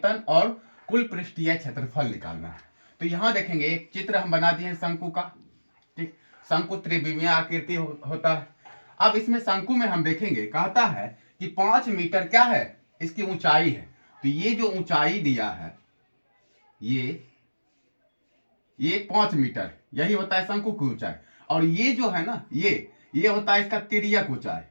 और कुल पृष्ठीय क्षेत्रफल निकालना है। तो यहाँ देखेंगे, एक चित्र हम बना दिए हैं शंकु का। ठीक, शंकु त्रिविमीय आकृति होता है। अब इसमें शंकु में हम देखेंगे, कहता है कि 5 मीटर क्या है, इसकी ऊंचाई है। तो ये जो ऊंचाई दिया है, ये 5 मीटर, यही होता है शंकु की ऊंचाई। और ये जो है ना, ये होता है इसका तिर्यक ऊंचाई।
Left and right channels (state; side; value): inverted; both; correlation -1.00